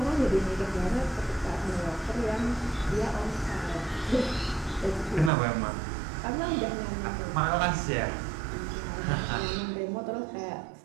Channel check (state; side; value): drops out; left; at 5.3 s